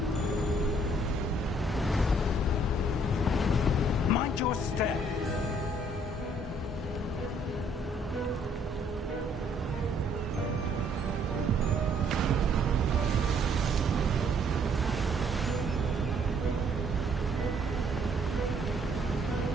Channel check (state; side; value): normal; both; correlation 0.64